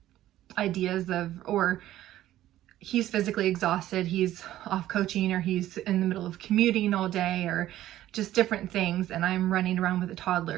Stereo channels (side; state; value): left; quieter; 13.7 dB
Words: ideas of, or he's physically exhausted, he's off coaching, or he's in the middle of commuting all day, or just different things, and I'm running around with a